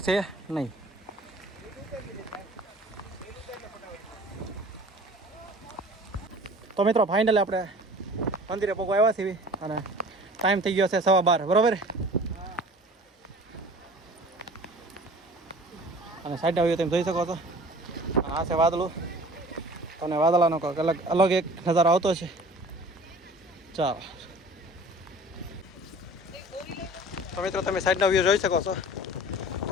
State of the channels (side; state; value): both; normal; correlation 0.45